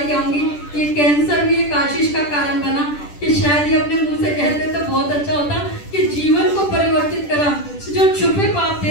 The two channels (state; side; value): late; right; 10 ms